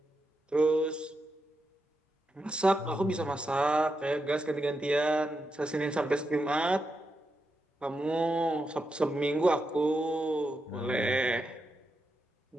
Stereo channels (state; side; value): normal; both; correlation 0.86